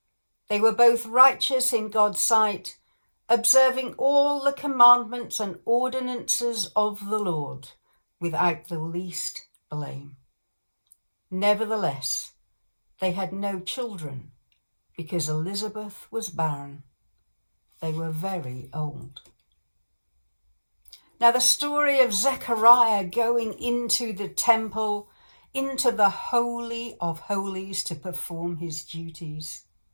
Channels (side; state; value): both; inverted; correlation -1.00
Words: They were both righteous in God's sight, observing all the commandments and ordinances of the Lord without the least blame. Nevertheless, they had no children because Elizabeth was barren. They were very old. Now the story of Zechariah going into the temple, into the Holy of Holies to perform his duties,